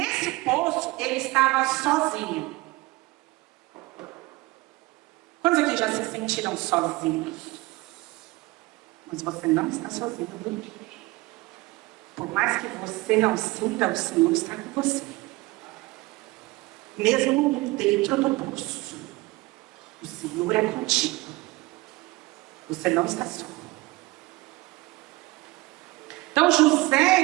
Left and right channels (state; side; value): quieter; left; 22.0 dB